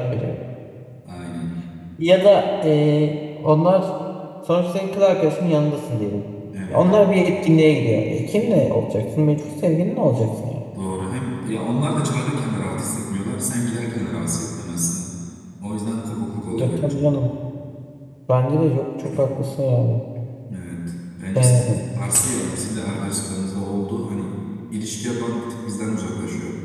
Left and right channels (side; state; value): both; identical; correlation 1.00